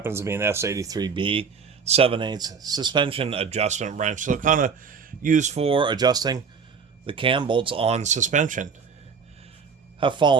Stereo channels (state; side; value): quieter; left; 5.8 dB